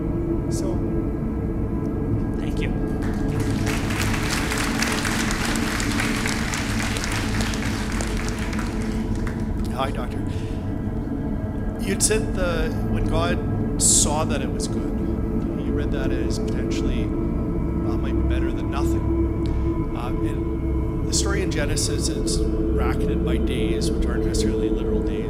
So, thank you. Hi, Doctor. You'd said when God saw that it was good, you read that as potentially might be better than nothing. And the story in Genesis is bracketed by days, which aren't necessarily literal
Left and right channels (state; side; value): identical; both; correlation 1.00